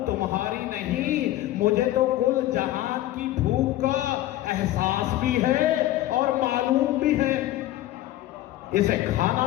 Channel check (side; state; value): right; quieter; 14.8 dB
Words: تمہاری نہیں، مجھے تو کل جہان کی بھوک کا احساس بھی ہے اور معلوم بھی ہے۔ اسے